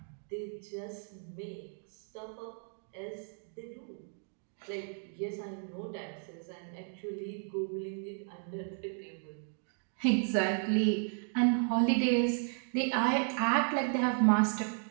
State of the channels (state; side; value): silent; left; 55 dB below the other